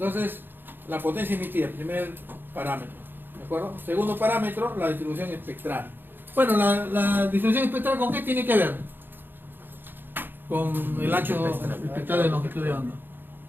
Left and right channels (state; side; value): late; left; 0.096 ms